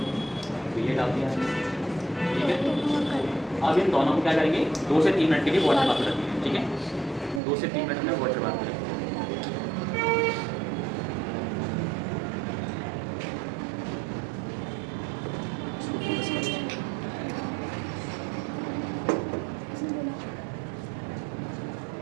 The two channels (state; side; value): drops out; left; at 7.4 s